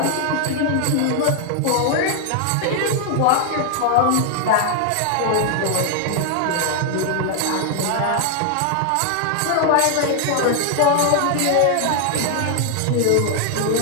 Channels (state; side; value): different; both; correlation 0.00